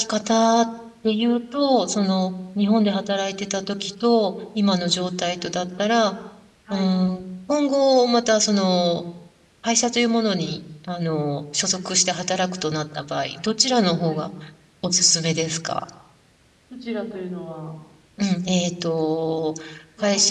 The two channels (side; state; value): both; identical; correlation 1.00